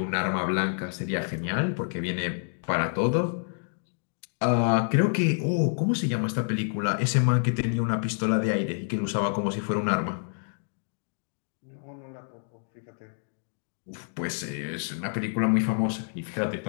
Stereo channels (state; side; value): silent; right; digital silence